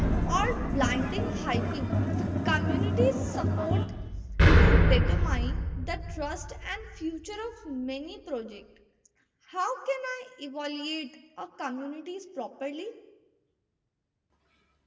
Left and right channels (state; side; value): identical; both; correlation 1.00